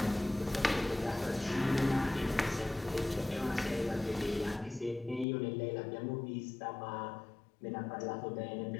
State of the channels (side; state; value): right; drops out; at 5.2 s